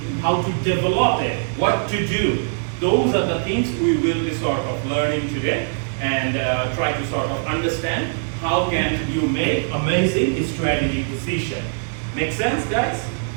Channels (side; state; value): left; silent; digital silence